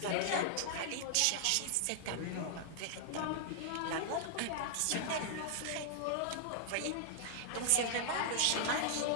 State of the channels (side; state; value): both; different; correlation -0.01